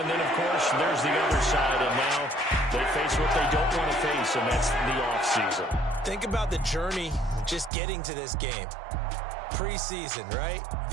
then, of course, there's the other side, and now they face what they don't want to face, and that's the offseason. Think about the journey just getting to this game. Preseason, right?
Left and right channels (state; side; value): drops out; left; at 7.7 s